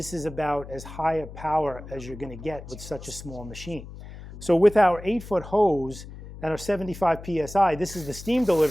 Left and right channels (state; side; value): noise; left; hum, 14 dB below the sound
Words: is about as high a power as you're going to get with such a small machine. So with our 8-foot hose and our 75 PSI, this is the steam